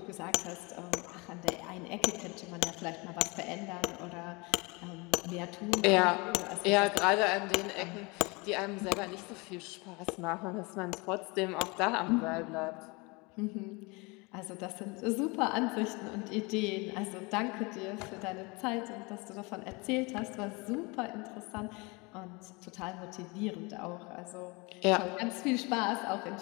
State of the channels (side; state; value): right; quieter; 27.3 dB